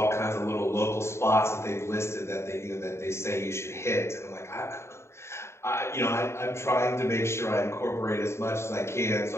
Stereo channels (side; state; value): right; late; 0.13 ms